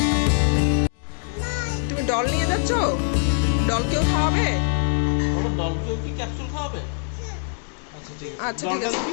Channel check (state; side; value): silent; right; 63 dB below the other